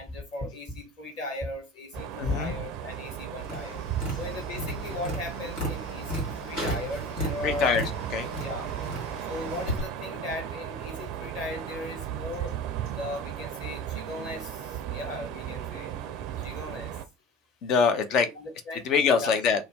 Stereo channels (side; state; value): both; normal; correlation 0.36